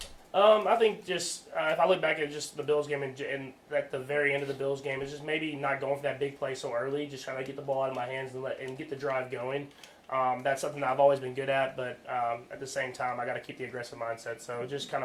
I think just if I look back at just the Bills game and at the very end of the Bills game, it's just maybe not going for that big play so early, just trying to get the ball out of my hands and get the drive going. That's something that I've always been good at, but at the same time, I got to keep the aggressive mindset. So just kind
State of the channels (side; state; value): both; identical; correlation 1.00